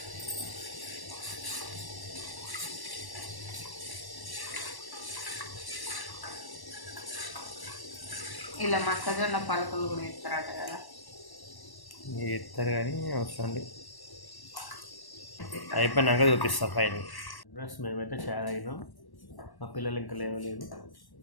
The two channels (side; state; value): right; late; 1.1 ms